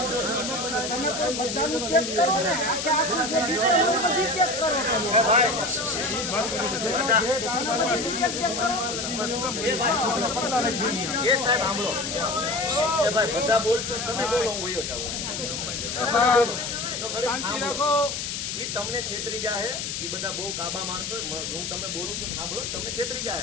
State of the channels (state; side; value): noise; left; hiss, 4 dB below the sound